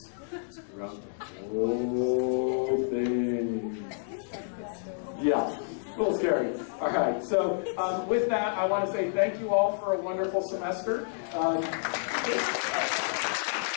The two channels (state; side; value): silent; right; digital silence